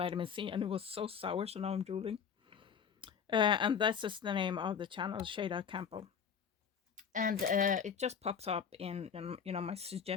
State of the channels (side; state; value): right; quieter; 7.1 dB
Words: C and it was so sour, so now I'm drooling. And this is the name of the channel, Shada Campbell. And it just pops up in my